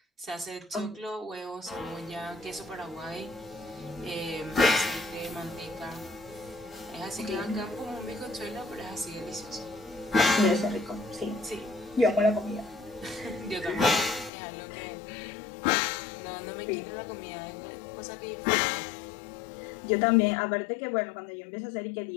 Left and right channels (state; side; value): drops out; right; at 14.3 s